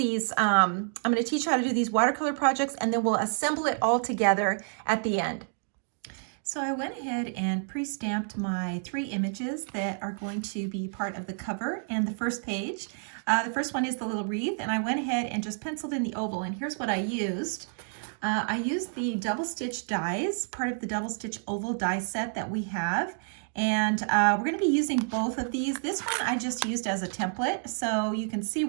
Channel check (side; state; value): left; silent; 58 dB below the other